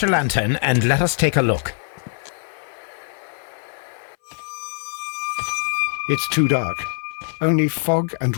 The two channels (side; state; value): right; silent; 58 dB below the other